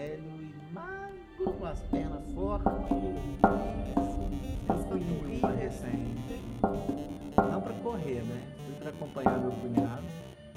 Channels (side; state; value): both; identical; correlation 1.00